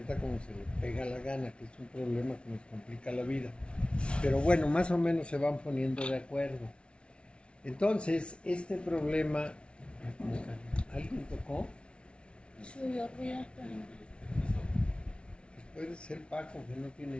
como se le pega la gana, que es un problema que nos complica la vida. Pero bueno, más o menos se van poniendo de acuerdo. Entonces, este problema... ¿Alguien tocó? Subió ruido, pero... Puede ser Paco, que no tiene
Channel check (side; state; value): right; late; 0.058 ms